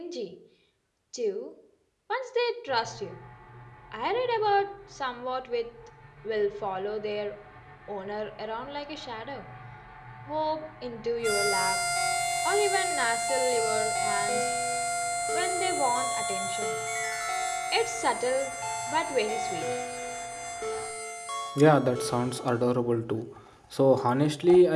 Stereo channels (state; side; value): identical; both; correlation 1.00